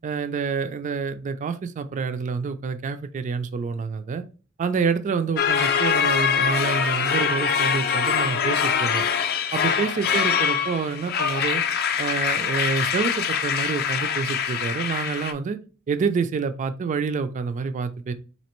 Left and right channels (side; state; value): both; normal; correlation 0.24